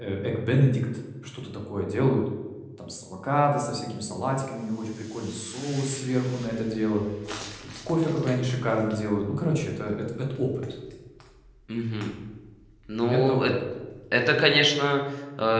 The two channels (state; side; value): identical; both; correlation 1.00